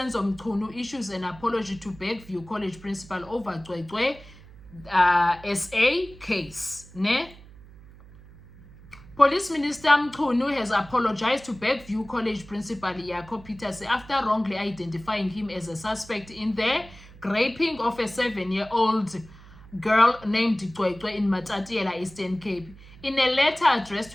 Mchunu issues an apology to Bergview College principal over Cwecwe SA case. Ne? Police Minister Mchunu has apologized to Bergview College principal Jaco Peters after wrongly identifying him as a suspect in the raping of a 7-year-old girl named Cwecwe in Matatiela, Eastern Cape. In a letter addressed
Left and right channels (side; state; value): right; noise; hum, 21 dB below the sound